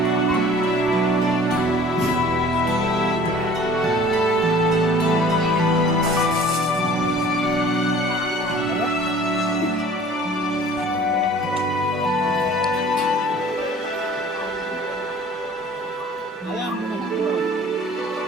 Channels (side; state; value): both; normal; correlation 0.50